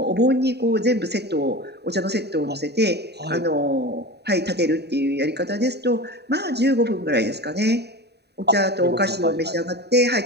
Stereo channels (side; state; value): left; late; 0.48 ms